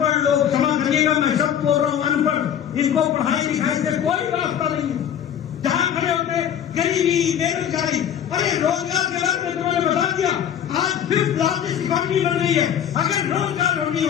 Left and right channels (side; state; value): right; quieter; 9.4 dB